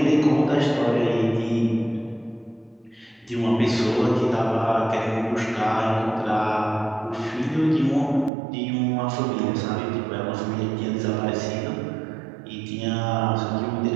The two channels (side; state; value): left; drops out; at 8.3 s